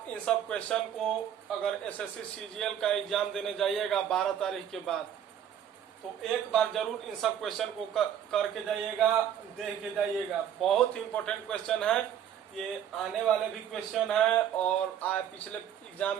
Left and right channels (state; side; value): quieter; left; 9.6 dB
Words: इन सब क्वेश्चन को अगर एसएससी सीजीएल का एग्जाम देने जाइएगा 12 तारीख के बाद, तो एक बार जरूर इन सब क्वेश्चन को करके जाइएगा, देख के जाइएगा। बहुत ही इम्पोर्टेंट क्वेश्चन है, ये आने वाले भी क्वेश्चन है और पिछले एग्जाम